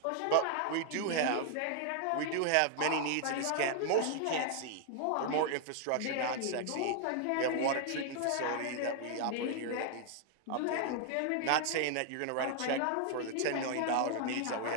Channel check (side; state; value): both; different; correlation 0.00